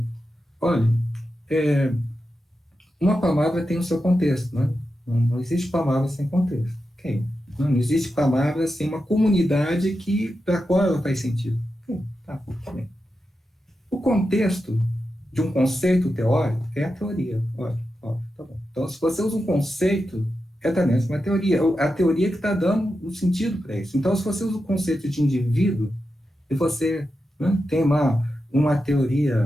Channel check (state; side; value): normal; both; correlation 0.89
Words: olha, uma palavra tem o seu contexto, né? Não existe palavra sem contexto. Okay. Não existe palavra sem uma comunidade para a qual ela faz sentido. Okay. Tá bem. O contexto de um conceito teórico é a teoria. Olha, tá bom. Então, se você usa um conceito, também uma teoria. A teoria que está dando o sentido para isso. Então, se você usa o conceito de indivíduo, e você, né, tem uma